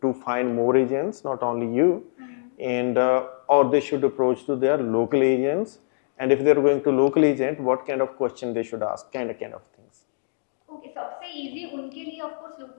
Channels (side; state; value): right; silent; digital silence